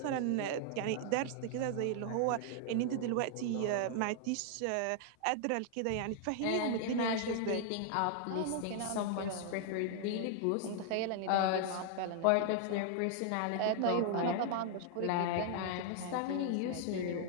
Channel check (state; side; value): different; both; correlation 0.00